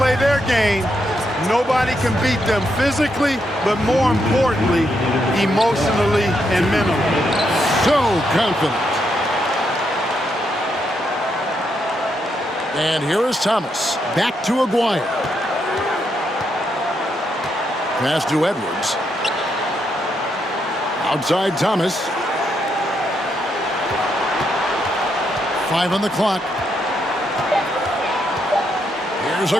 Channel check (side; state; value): both; normal; correlation 0.79